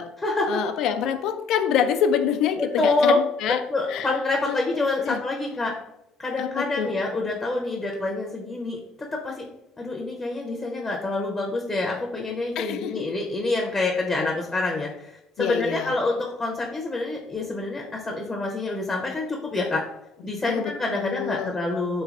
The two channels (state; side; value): quieter; right; 3.7 dB